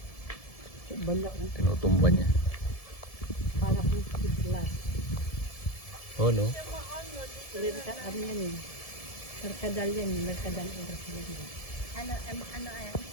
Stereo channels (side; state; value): right; late; 1.7 ms